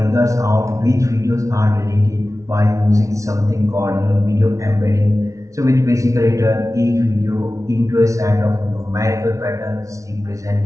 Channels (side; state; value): left; late; 0.15 ms